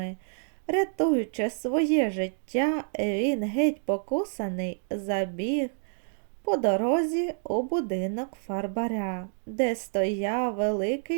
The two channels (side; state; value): left; silent; 59 dB below the other